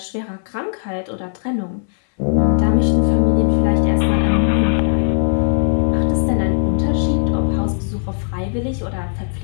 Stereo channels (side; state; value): right; silent; 64 dB below the other